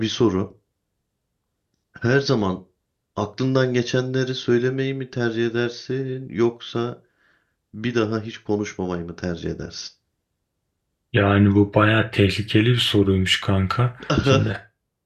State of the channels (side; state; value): both; identical; correlation 1.00